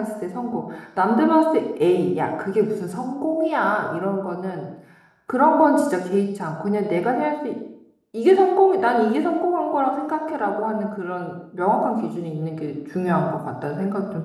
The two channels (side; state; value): both; identical; correlation 1.00